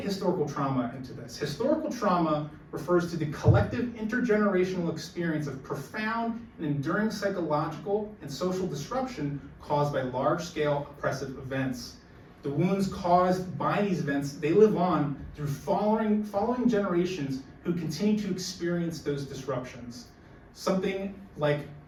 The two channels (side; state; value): both; identical; correlation 1.00